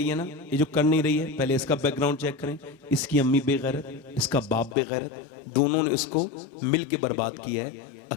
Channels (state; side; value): drops out; right; at 4.8 s